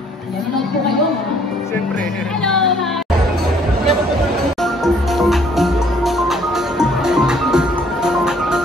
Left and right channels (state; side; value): normal; both; correlation 0.61